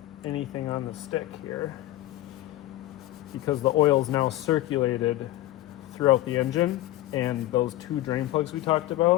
anything on the stick here, because the oil is now circulated throughout the engine and those 2 drain plugs we talked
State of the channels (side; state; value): right; quieter; 15.7 dB